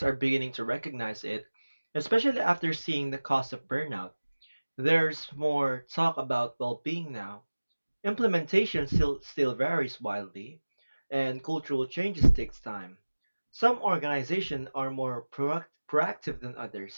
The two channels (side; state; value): both; inverted; correlation -1.00